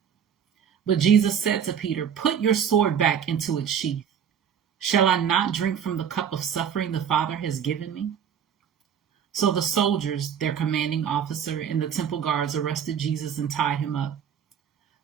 But Jesus said to Peter, "Put your sword back into its sheath. Shall I not drink from the cup of suffering the Father has given me?" So the soldiers, their commanding officer, and the temple guards arrested Jesus and tied him up.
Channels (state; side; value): quieter; left; 8.2 dB